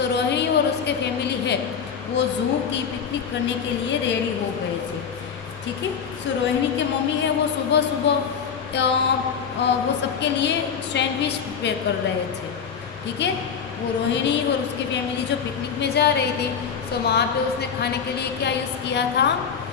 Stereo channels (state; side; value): quieter; right; 6.9 dB